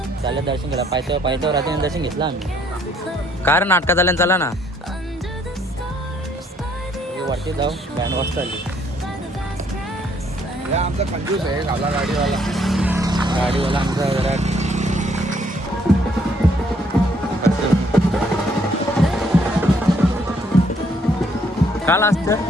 चालेल दर्शन केलं. पायथ्यावर रात्री दर्शन घेतलं आम्ही. कारण नाटकात आल्यानं चला ना वरती जाऊ. बँड वाजता आली. आमचा कंजूस आहे आपला गाडीवाला आमचा जरा काल असतं.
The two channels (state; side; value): normal; both; correlation 0.67